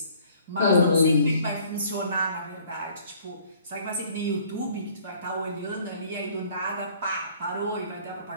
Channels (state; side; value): inverted; both; correlation -0.57